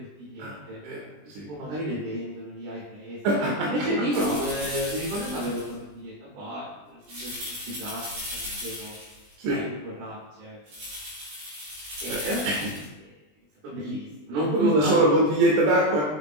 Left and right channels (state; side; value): late; left; 20 ms